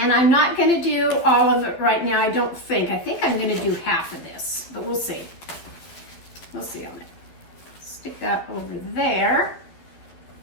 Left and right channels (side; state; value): right; late; 12 ms